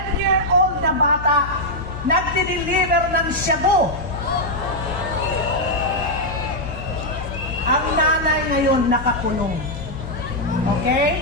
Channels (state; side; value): noise; left; hum, 10 dB below the sound